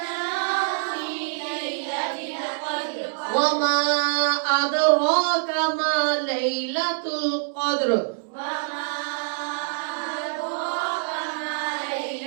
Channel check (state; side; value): silent; left; digital silence